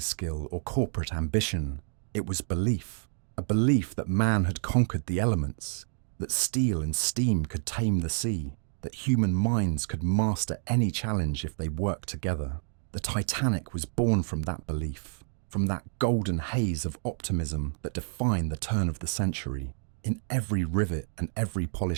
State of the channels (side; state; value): left; silent; digital silence